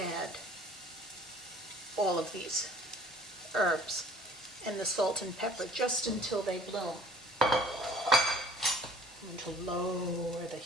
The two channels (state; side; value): normal; both; correlation 0.52